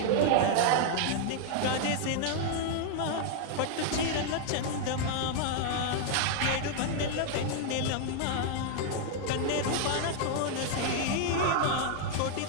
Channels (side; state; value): both; different; correlation 0.00